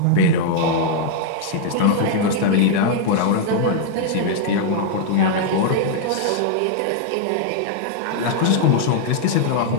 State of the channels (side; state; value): both; different; correlation -0.01